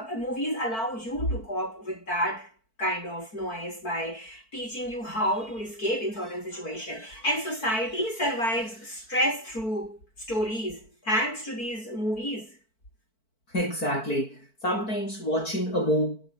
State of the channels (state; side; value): late; right; 4.5 ms